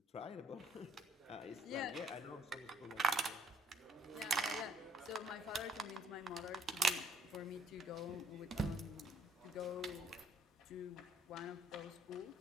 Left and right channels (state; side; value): normal; both; correlation 0.64